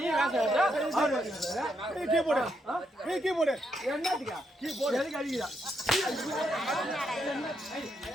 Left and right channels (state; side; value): normal; both; correlation 0.79